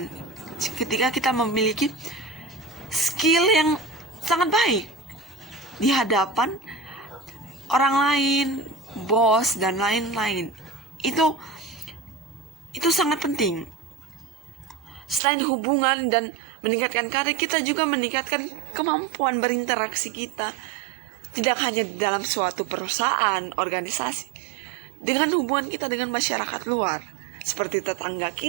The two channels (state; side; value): drops out; left; at 15.2 s